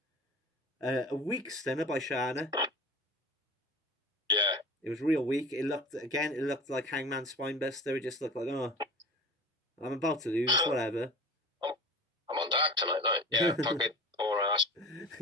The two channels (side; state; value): both; normal; correlation 0.37